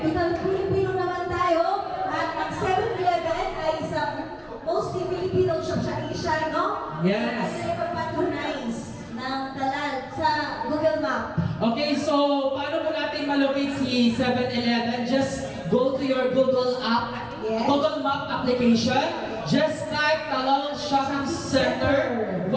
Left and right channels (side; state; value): both; identical; correlation 1.00